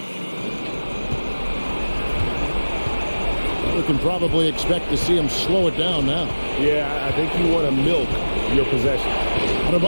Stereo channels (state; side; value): inverted; both; correlation -1.00